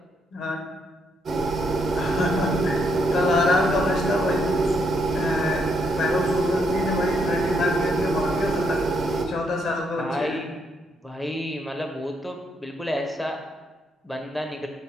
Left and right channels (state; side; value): normal; both; correlation 0.75